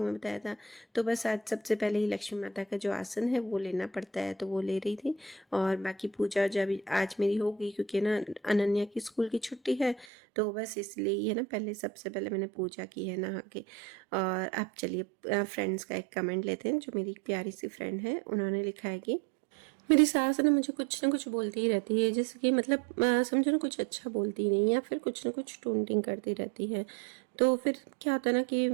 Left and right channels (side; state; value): left; drops out; at 10.1 s